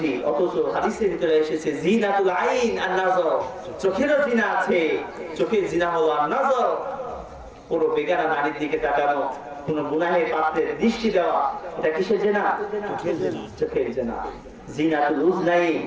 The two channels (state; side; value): identical; both; correlation 1.00